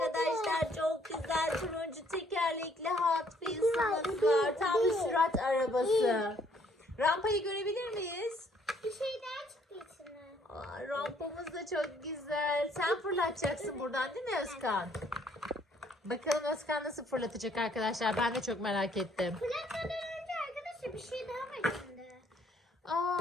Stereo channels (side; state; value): both; normal; correlation 0.65